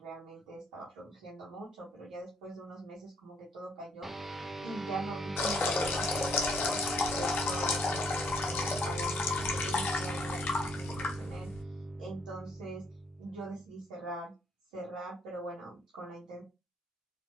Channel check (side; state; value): both; normal; correlation 0.67